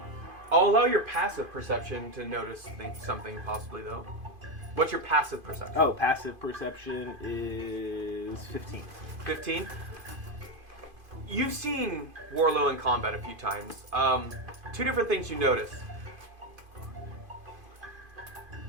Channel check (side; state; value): left; late; 2.5 ms